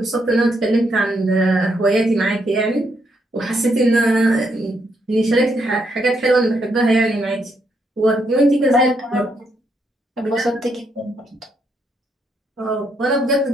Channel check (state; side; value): normal; both; correlation 0.76